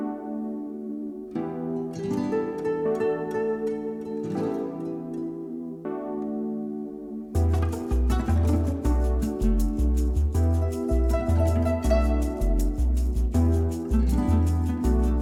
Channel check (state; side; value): identical; both; correlation 1.00